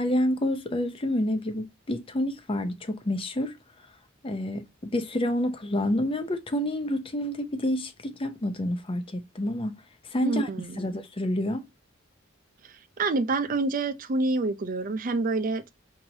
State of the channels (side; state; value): both; normal; correlation 0.62